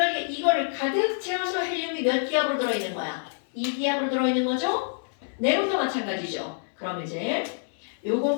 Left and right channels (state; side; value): silent; right; 60 dB below the other